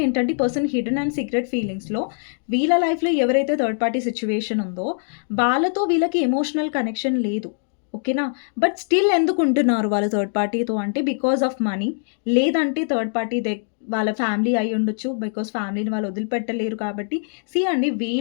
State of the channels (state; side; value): silent; right; digital silence